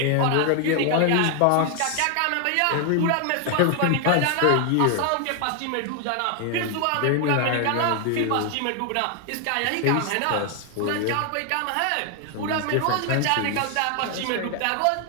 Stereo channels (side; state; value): both; different; correlation 0.00